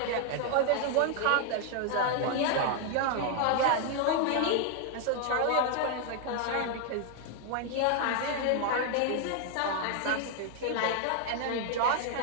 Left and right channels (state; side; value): different; both; correlation 0.00